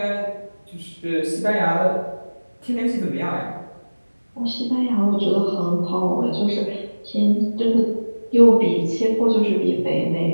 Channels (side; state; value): both; inverted; correlation -1.00